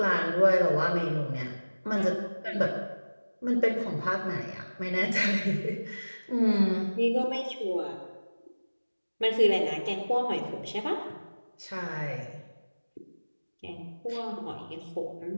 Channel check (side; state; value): both; inverted; correlation -1.00